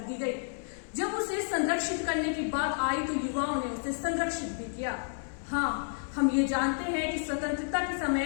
दी गई। जब उसे संरक्षित करने की बात आई तो युवाओं ने उसे संरक्षित भी किया। हाँ, हम ये जानते हैं कि स्वतंत्रता के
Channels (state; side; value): silent; right; 57 dB below the other